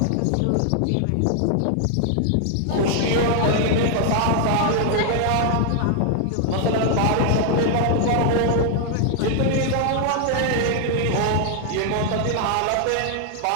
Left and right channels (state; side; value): different; both; correlation 0.00